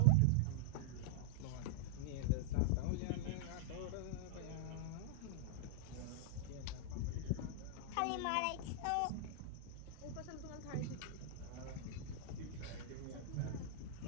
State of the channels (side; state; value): both; different; correlation -0.01